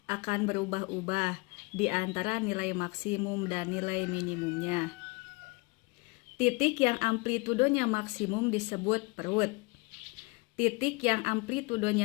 akan berubah-ubah di antara nilai maksimum dan nilai minimumnya. Titik yang amplitudonya maksimum disebut perut. Titik yang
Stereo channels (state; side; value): quieter; right; 26.4 dB